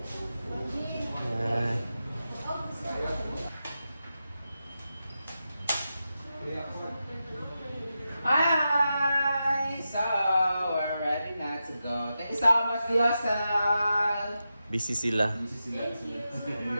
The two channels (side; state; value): both; inverted; correlation -0.90